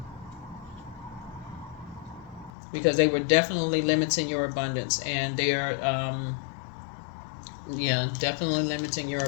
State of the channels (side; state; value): right; drops out; at 2.5 s